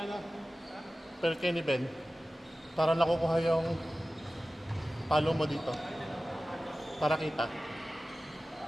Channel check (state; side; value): normal; both; correlation 0.95